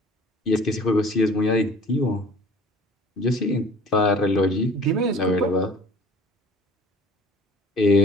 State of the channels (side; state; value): both; normal; correlation 0.48